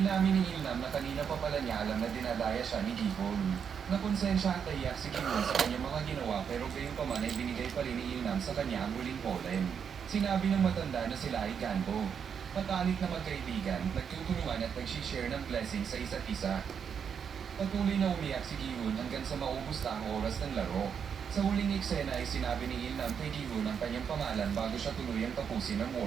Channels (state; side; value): quieter; left; 7.2 dB